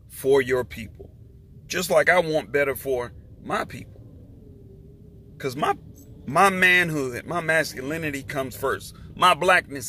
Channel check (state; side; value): identical; both; correlation 1.00